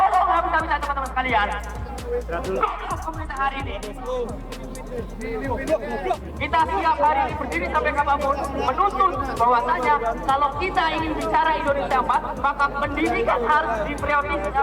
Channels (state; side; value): identical; both; correlation 1.00